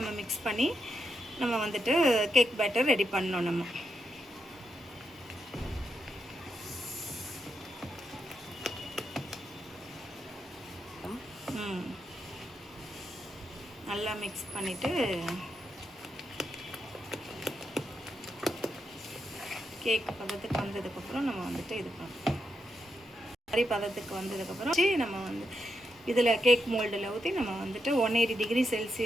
மிக்ஸ் பண்ணி நம்ம வந்துட்டு கேக் பேட்டர் ரெடி பண்ணோம். நம்ம நல்லா மிக்ஸ் பண்ணிவிட்டு கேக் பதத்துக்கு வந்ததுக்கப்புறம் நம்ம வந்துட்டு இது பண்ணோம். மாதிரி பதத்துக்கு வந்ததுக்கப்புறம் நம்ம வந்து இதில் கேக் மோல்டில் ஊற்றி நம்ம வந்துட்டு 180 டிகிரி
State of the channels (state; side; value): normal; both; correlation 0.84